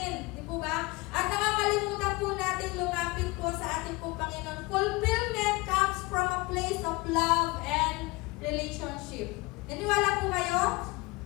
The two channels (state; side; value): quieter; right; 23.9 dB